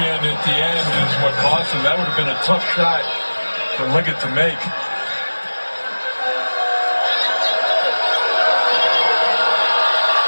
at the end is what cost him. That would have been a tough shot for Leggett to make.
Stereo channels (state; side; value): inverted; both; correlation -1.00